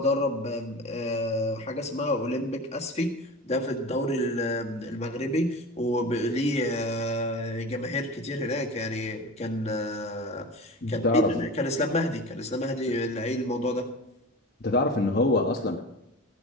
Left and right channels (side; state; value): both; normal; correlation 0.32